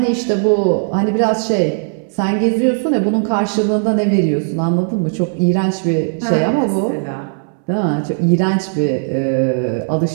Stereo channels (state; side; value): silent; left; digital silence